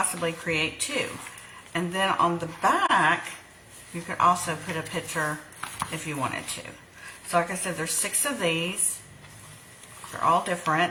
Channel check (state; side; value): identical; both; correlation 1.00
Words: create 2. And then on the back, you could also put a picture if you wanted to. So like I said, there's 6 of these. They're all